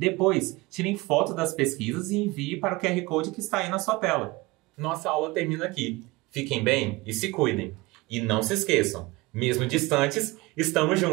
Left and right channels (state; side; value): quieter; left; 22.2 dB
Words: tirem foto das pesquisas e envie para o QR Code que está aí na sua tela. Nossa aula termina aqui. Fiquem bem e se cuidem. E não se esqueçam, mesmo distantes, estamos